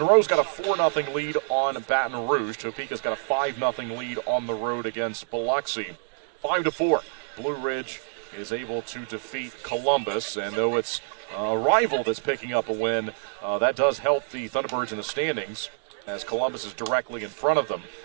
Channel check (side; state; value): left; silent; 60 dB below the other